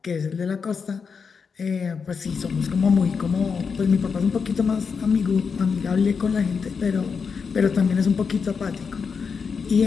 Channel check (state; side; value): quieter; right; 5.7 dB